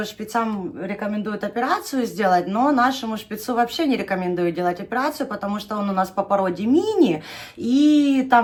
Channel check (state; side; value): identical; both; correlation 1.00